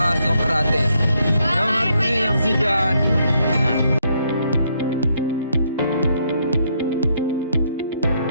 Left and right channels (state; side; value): inverted; both; correlation -0.74